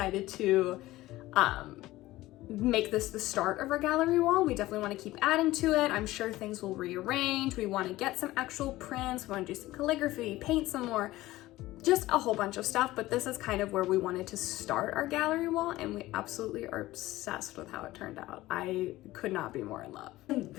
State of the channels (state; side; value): quieter; right; 17.2 dB